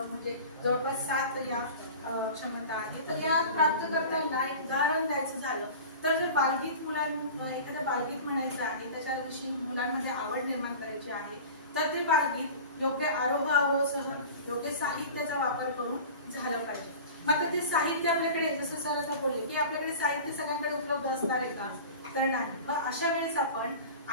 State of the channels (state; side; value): inverted; both; correlation -0.37